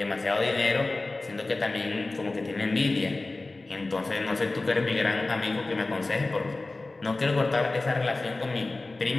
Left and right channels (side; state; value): right; quieter; 3.2 dB